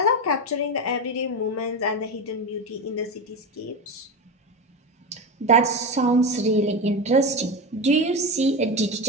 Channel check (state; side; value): normal; both; correlation 0.19